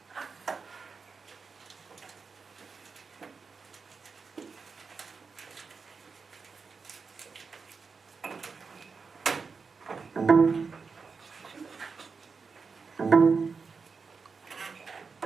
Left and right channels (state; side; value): quieter; left; 5.0 dB